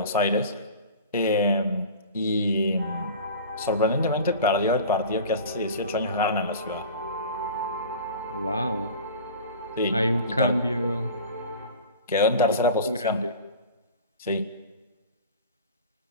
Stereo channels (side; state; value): both; inverted; correlation -0.37